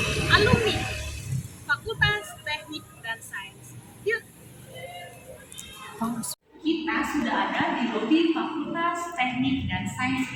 alumni Fakultas Teknik dan Sains. Yuk. Kita sudah ada di lobi Fakultas Teknik dan Sains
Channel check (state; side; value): identical; both; correlation 1.00